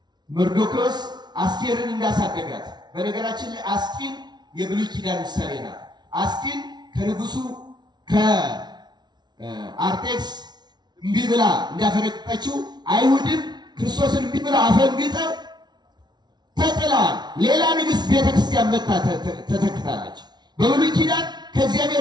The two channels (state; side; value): late; left; 0.20 ms